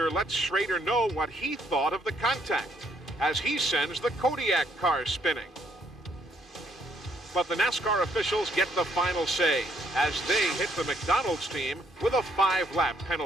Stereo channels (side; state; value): both; normal; correlation 0.69